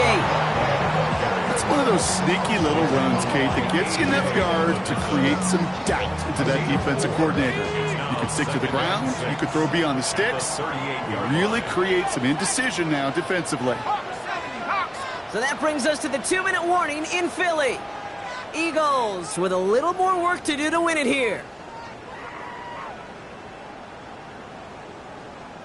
It's one of those sneaky little runs, Kate, that gets you enough yards to create some doubt into that defensive coordinator. You can stick to the ground. You could throw beyond the sticks. You really create some indecision now defensively. So that brings us to the 2-minute warning in Philly. Eagles with a little more work to do to win it here.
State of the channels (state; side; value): identical; both; correlation 1.00